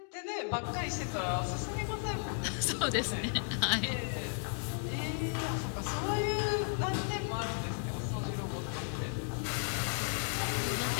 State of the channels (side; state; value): right; silent; 55 dB below the other